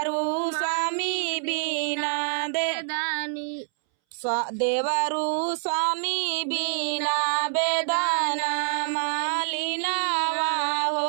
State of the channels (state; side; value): silent; left; 61 dB below the other